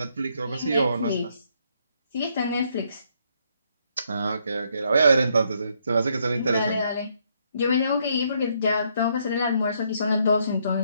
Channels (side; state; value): both; inverted; correlation -0.72